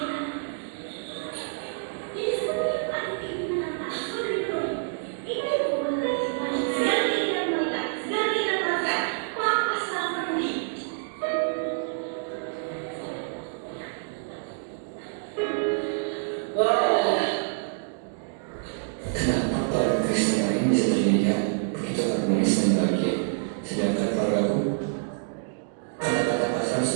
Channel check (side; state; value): left; silent; digital silence